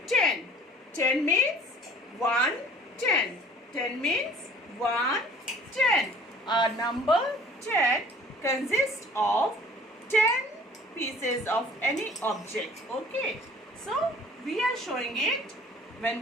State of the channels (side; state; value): both; normal; correlation 0.51